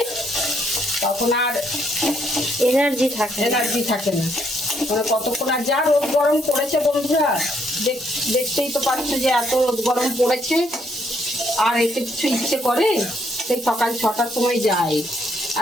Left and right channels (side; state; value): both; normal; correlation 0.72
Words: তখন আর এনার্জি থাকে এনার্জি থাকে না। মানে কতক্ষণ, আর যা রোদ গরম পড়েছে বন্ধুরা, দেখতেই তো পাচ্ছ যে এত রোদ গরম পড়েছে, আর এতে কিছু ইচ্ছে করে? সেই সকাল 6টার সময় যায়